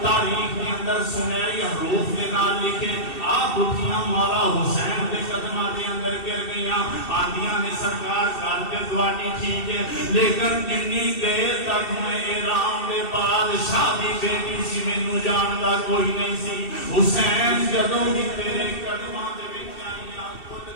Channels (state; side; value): late; right; 2.7 ms